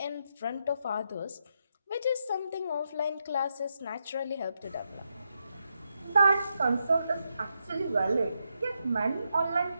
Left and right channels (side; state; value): both; inverted; correlation -0.83